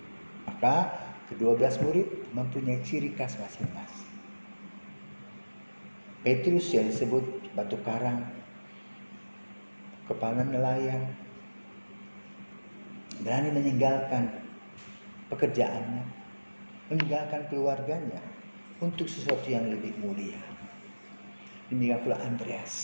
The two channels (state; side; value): inverted; both; correlation -1.00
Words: Maka ke-12 murid mempunyai ciri khas masing-masing. Petrus yang disebut batu karang, kepala nelayan, berani meninggalkan pekerjaannya, meninggalkan keluarganya untuk sesuatu yang lebih mulia. Demikian pula